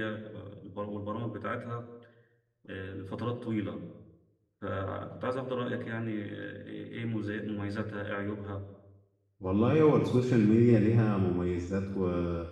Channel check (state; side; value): identical; both; correlation 1.00